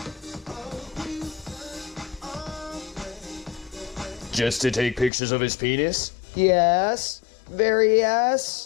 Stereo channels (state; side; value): drops out; right; at 5.1 s